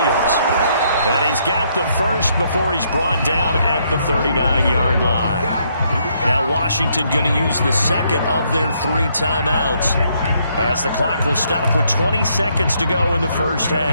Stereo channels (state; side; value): inverted; both; correlation -0.72